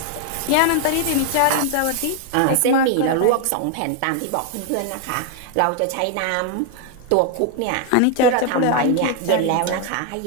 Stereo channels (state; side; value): different; both; correlation 0.01